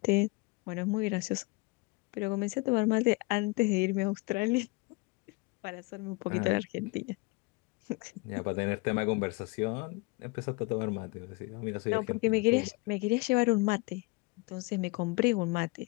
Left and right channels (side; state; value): right; quieter; 26.1 dB